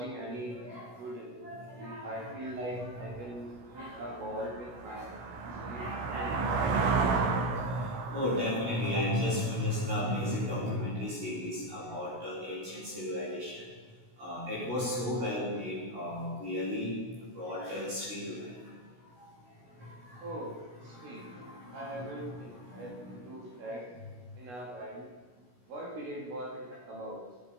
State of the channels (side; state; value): left; late; 16 ms